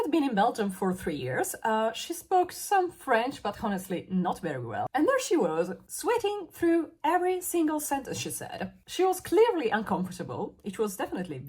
been in Belgium for 3 years. She spoke some French, but honestly not very well. And there she was, sweating through every single sentence she said. She was clearly uncomfortable. It was definitely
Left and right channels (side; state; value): both; identical; correlation 1.00